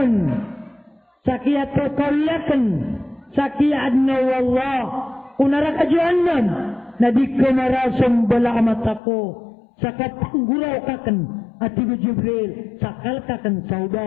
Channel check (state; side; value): drops out; right; at 9.0 s